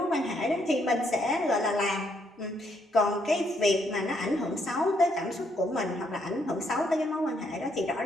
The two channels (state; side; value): normal; both; correlation 0.73